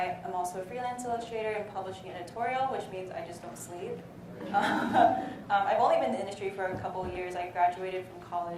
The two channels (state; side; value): identical; both; correlation 1.00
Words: am also a freelance illustrator and publishing editorial, which means I just don't sleep. I've only been in the industry for a couple of years. I graduated from